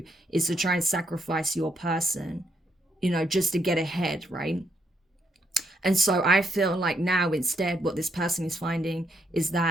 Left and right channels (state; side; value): normal; both; correlation 0.76